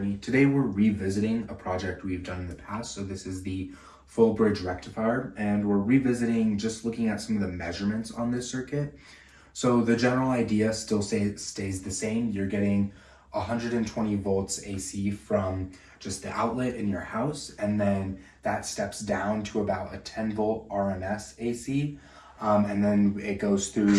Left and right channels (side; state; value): both; identical; correlation 1.00